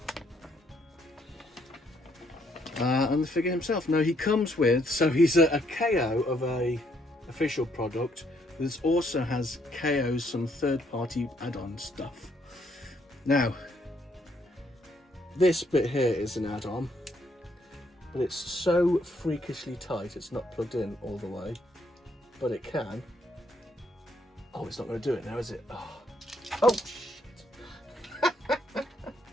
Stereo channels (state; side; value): normal; both; correlation 0.71